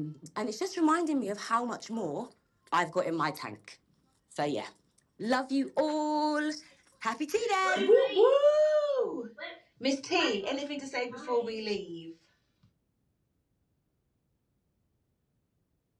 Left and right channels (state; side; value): identical; both; correlation 1.00